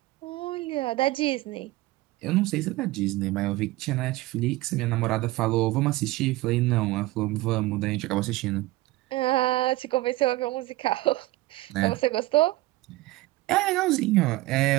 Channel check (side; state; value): left; quieter; 18.7 dB